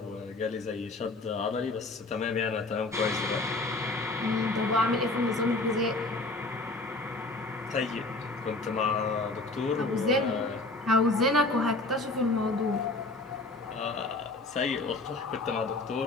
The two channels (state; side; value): quieter; right; 3.0 dB